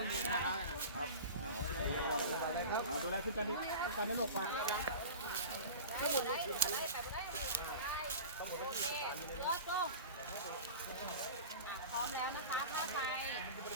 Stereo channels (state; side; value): inverted; both; correlation -0.33